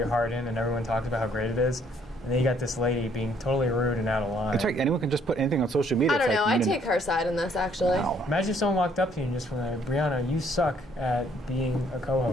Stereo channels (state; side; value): normal; both; correlation 0.64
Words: heart in and everyone talks about how great it is, and then you got this lady being totally rude and out of line. It's like anyone can just put anything on social media. I don't know. I take her side in this, actually. Wow. Imagine if someone walked up to you and just went, Brianna, you suck at being a